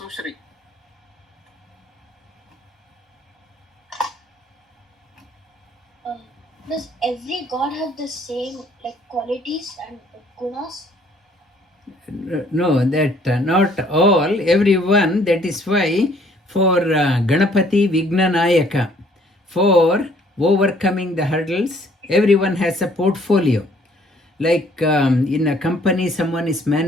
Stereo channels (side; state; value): both; normal; correlation 0.61